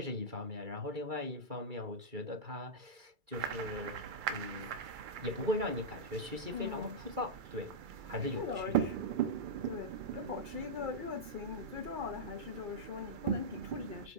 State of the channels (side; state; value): left; late; 2.3 ms